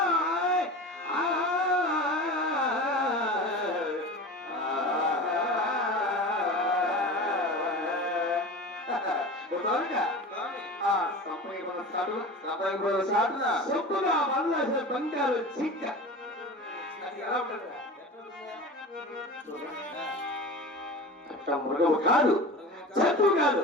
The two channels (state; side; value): normal; both; correlation 0.32